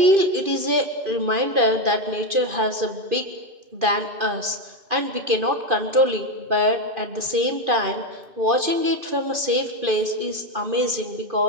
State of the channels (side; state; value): left; late; 2.5 ms